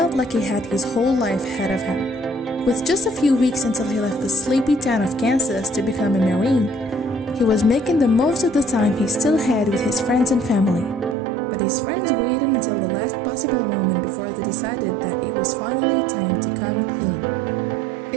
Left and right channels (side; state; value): left; drops out; at 11.2 s